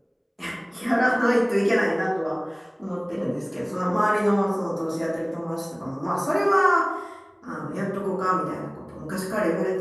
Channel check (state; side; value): identical; both; correlation 1.00